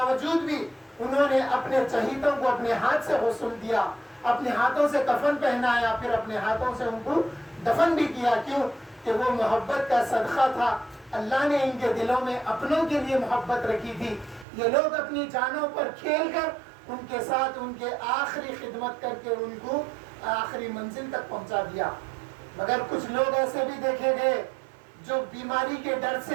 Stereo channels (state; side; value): drops out; left; at 14.5 s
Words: بھی انہوں نے اپنے چہیتوں کو اپنے ہاتھ سے غسل دیا، اپنے ہاتھوں سے کفن پہنایا، پھر اپنے ہاتھوں سے ان کو دفن بھی کیا۔ کیوں؟ کہ وہ محبت کا صدقہ تھا، اللہ نے ان کے دلوں میں اپنوں کے لیے محبت رکھی تھی۔ یہ لوگ اپنی جانوں پر کھیل کر ان کے ساتھ ان کے آخری خدمت کر کے ان کو آخری منزل تک پہنچا دیا۔ مگر کچھ لوگ ایسے بھی دیکھے گئے جو بیماری کے ڈر